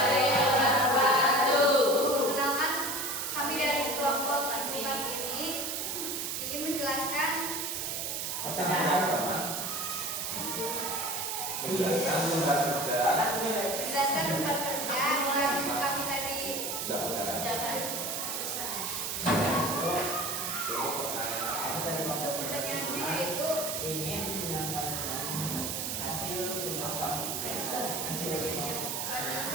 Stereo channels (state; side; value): noise; right; hiss, 2 dB below the sound